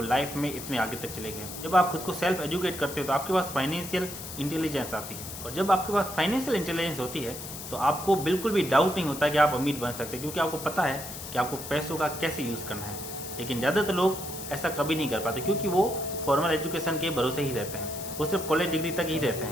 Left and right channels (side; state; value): left; noise; hiss, 10 dB below the sound